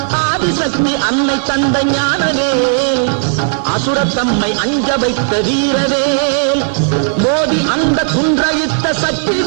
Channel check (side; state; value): left; silent; digital silence